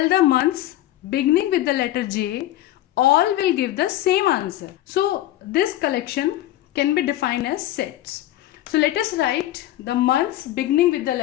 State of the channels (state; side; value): quieter; right; 14.3 dB